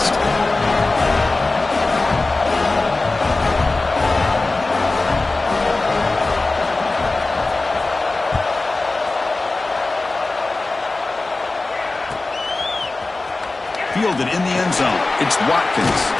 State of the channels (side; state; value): right; quieter; 3.3 dB